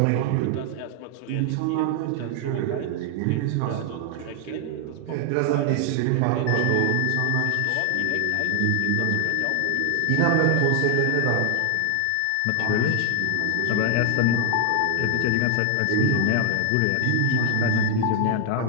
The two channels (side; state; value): both; different; correlation 0.00